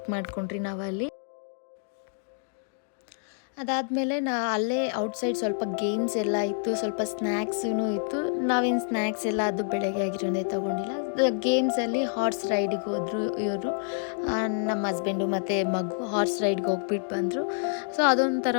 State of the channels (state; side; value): silent; right; digital silence